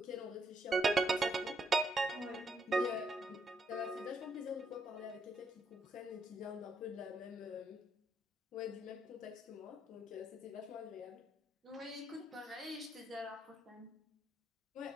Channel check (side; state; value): both; normal; correlation 0.75